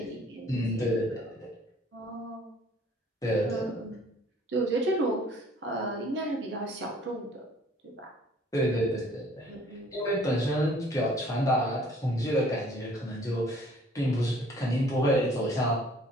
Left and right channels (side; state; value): both; normal; correlation 0.56